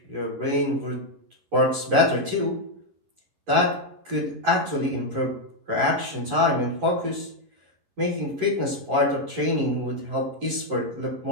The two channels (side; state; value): left; late; 11 ms